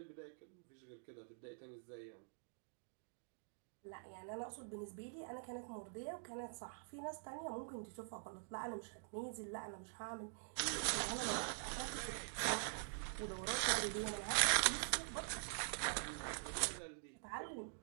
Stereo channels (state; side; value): silent; left; digital silence